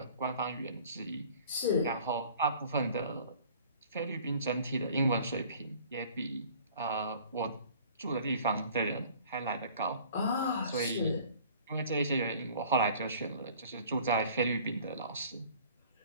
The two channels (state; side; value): inverted; both; correlation -0.50